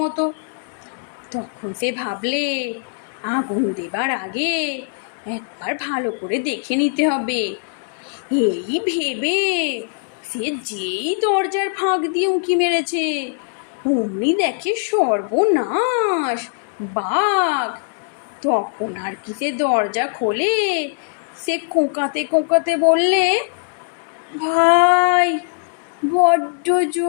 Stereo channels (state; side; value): silent; right; 64 dB below the other